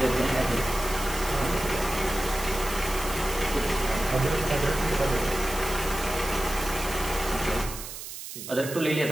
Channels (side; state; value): right; noise; hiss, 10 dB below the sound